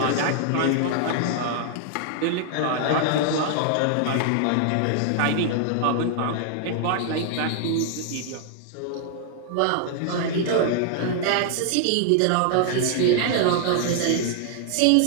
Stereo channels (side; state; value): both; different; correlation -0.01